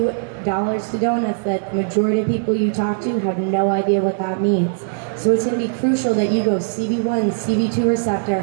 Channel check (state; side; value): silent; left; digital silence